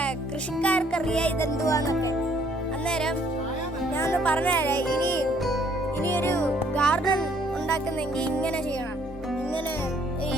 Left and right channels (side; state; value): both; normal; correlation 0.64